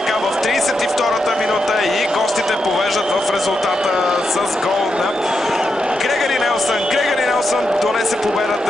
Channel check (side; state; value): both; normal; correlation 0.85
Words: в 32-та минута и гостите повеждат в резултата с гол на Грегори Нелсън. Грегори Нелсън донесе